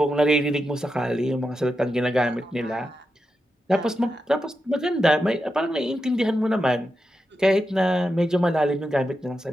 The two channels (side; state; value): both; normal; correlation 0.88